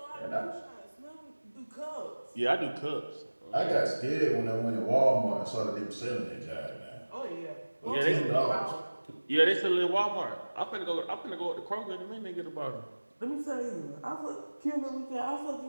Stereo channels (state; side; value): inverted; both; correlation -1.00